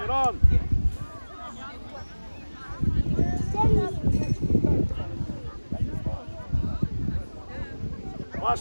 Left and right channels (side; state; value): both; inverted; correlation -1.00